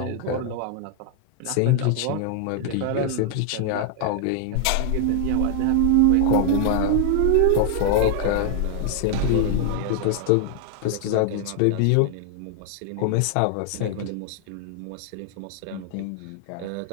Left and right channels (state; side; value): different; both; correlation 0.00